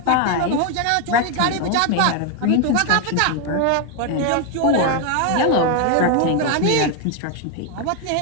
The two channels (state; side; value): different; both; correlation 0.01